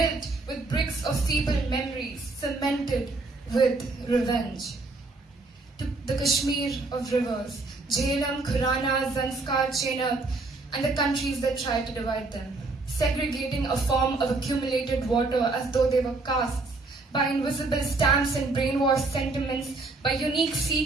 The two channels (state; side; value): quieter; left; 3.4 dB